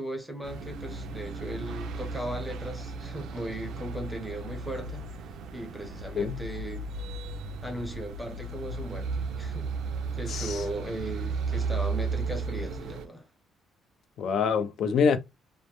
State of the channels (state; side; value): normal; both; correlation 0.64